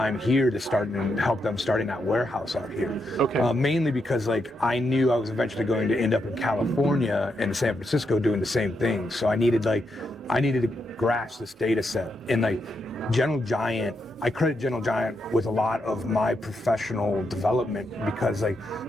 here to help them starting that warehouse out here. Okay. Mainly because like I knew I was eventually going to end up in California and San Francisco doing the same thing. So I needed to grasp this data set. And like Gentle Giant, I credit Gentle Giant with a lot of my professional development, because like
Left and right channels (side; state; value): both; normal; correlation 0.82